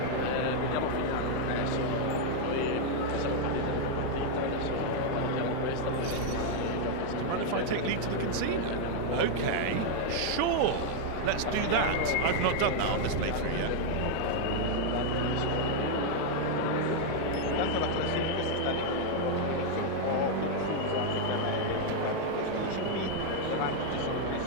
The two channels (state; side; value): different; both; correlation 0.00